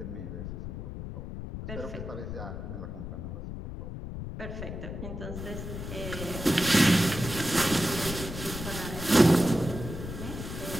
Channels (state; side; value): noise; left; rumble, 7 dB below the sound